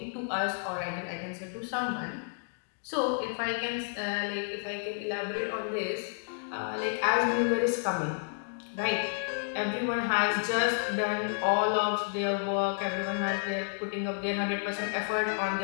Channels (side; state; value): right; silent; digital silence